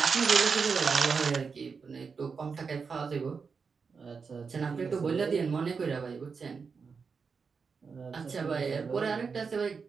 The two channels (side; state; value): left; quieter; 5.4 dB